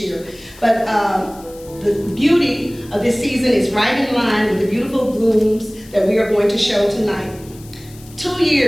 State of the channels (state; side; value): noise; left; hiss, 22 dB below the sound